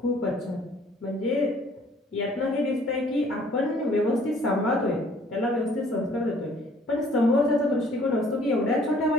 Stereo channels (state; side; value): normal; both; correlation 0.57